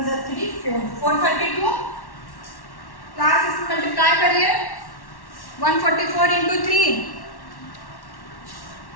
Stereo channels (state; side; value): late; right; 1.1 ms